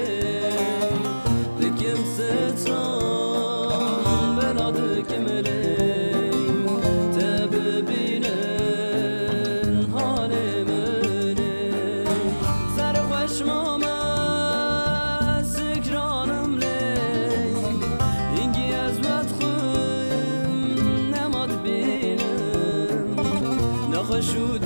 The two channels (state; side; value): inverted; both; correlation -1.00